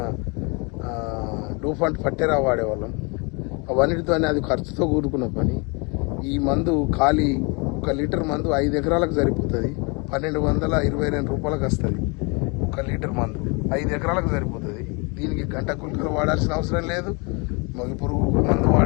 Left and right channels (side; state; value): right; quieter; 31.1 dB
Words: డూఫంట్ పట్టెరా వాడేవాళ్ళం. అవన్నిటితోనే అది ఖర్చుతో కూడుకున్న పని. ఈ మందు ఖాళీ 1 లీటర్ మందు 5 ఎకరాలకు సరిపోతుంది. 1222 రూపాయలకు వస్తుంది 1 లీటర్ మందు. 5 ఎకరాలకు సరిపోతుంది. దీనికి గంట గుల్కలు వాడాల్సిన అవసరం లేదు, మొగి పురుగు మందు